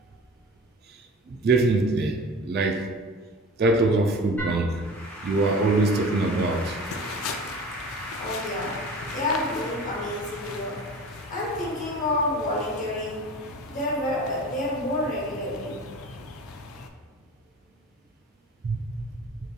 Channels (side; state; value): both; normal; correlation 0.37